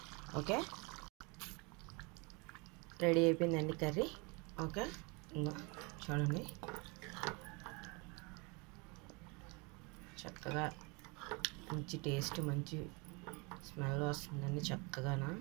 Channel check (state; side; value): quieter; left; 29.5 dB